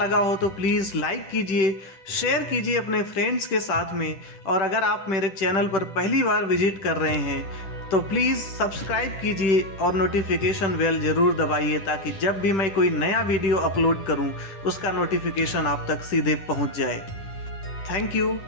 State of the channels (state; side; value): late; right; 10 ms